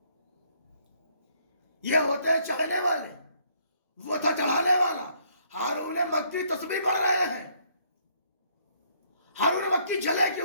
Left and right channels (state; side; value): inverted; both; correlation -0.67